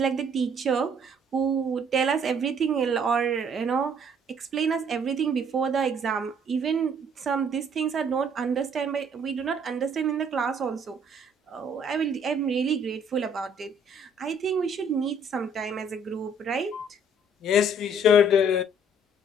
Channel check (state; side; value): normal; both; correlation 0.61